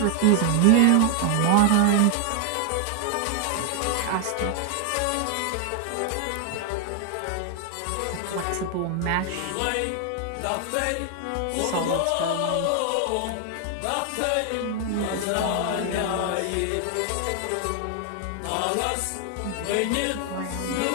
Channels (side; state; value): both; different; correlation 0.00